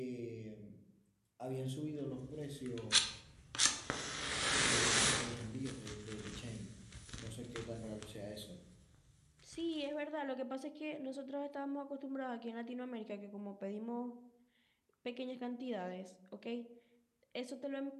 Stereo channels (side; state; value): both; identical; correlation 1.00